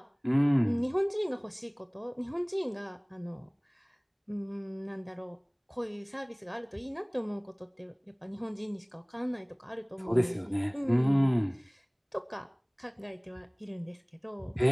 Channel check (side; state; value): both; identical; correlation 1.00